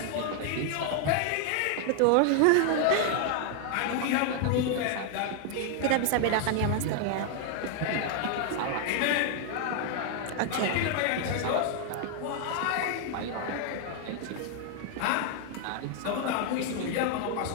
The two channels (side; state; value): both; different; correlation 0.00